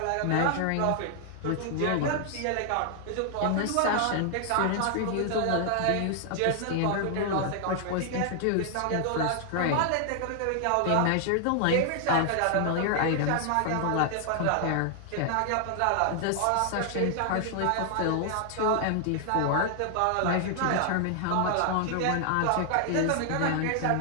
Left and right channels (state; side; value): different; both; correlation 0.00